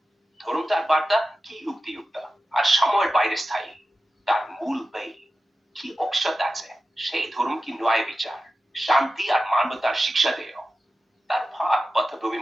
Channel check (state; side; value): normal; both; correlation 0.93